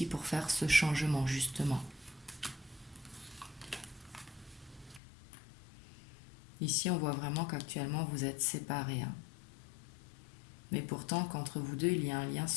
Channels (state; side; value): drops out; right; at 5.0 s